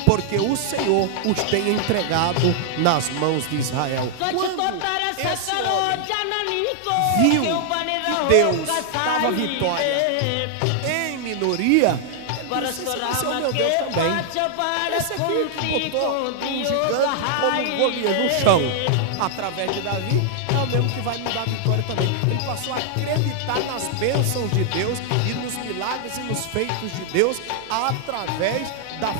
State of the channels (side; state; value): both; different; correlation -0.01